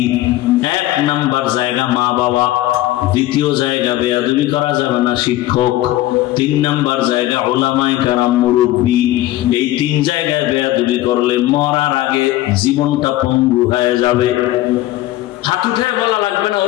1 নাম্বার জায়গা মা বাবা, 2য় জায়গা বেয়াদবি করা যাবে না শিক্ষক, 3 নাম্বার জায়গা উলামায়ে কেরাম মুরব্বি। এই 3 জায়গায় বেয়াদবি করলে মরার আগে জীবনটা পঙ্গু হয়ে যাবে। হাত উঠায় বলা লাগবে না,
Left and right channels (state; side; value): quieter; right; 15.8 dB